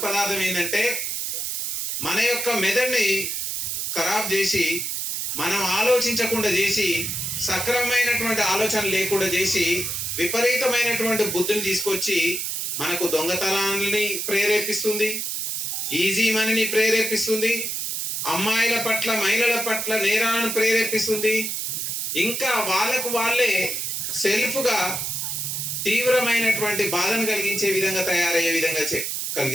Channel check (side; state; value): right; noise; hiss, 2 dB below the sound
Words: పదార్థం ఏంటంటే మన యొక్క మెదడుని ఖరాబ్ చేసి, మనం ఆలోచించకుండా చేసి, సక్రమమైనటువంటి ఆలోచన లేకుండా చేసి, విపరీతమైనటువంటి బుద్ధిని తీసుకొచ్చి మనకు దొంగతనాన్ని ప్రేరేపిస్తుంది, ఈజీ మనీని ప్రేరేపిస్తుంది, అమ్మాయిల పట్ల, మహిళల పట్ల నేరాలను ప్రేరేపిస్తుంది. ఇంకా వాళ్ళకు వాళ్ళే సెల్ఫ్గా తీవ్రమైనటువంటి బాధను కలిగించే విధంగా, తయారయ్యే విధంగా